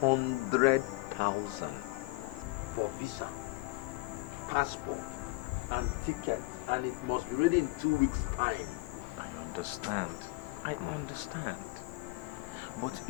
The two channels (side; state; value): right; quieter; 22.8 dB